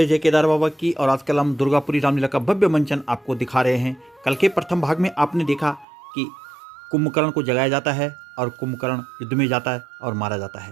जय केदार बाबा की। और आजकल हम दुर्गापुरी रामलीला का भव्य मंचन आपको दिखा रहे हैं। कल के प्रथम भाग में आपने देखा कि कुंभकर्ण को जगाया जाता है और कुंभकर्ण युद्ध में जाता है और मारा जाता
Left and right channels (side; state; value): left; drops out; at 5.9 s